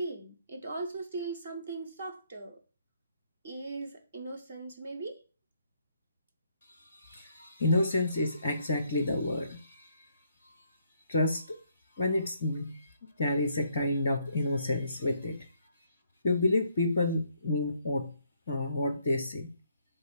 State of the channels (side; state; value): both; inverted; correlation -0.70